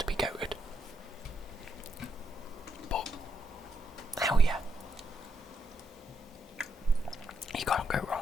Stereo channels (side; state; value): both; normal; correlation 0.79